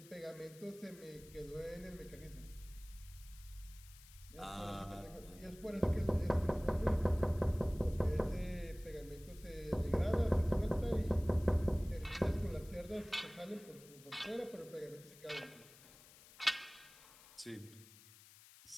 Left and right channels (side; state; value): left; noise; hiss, 21 dB below the sound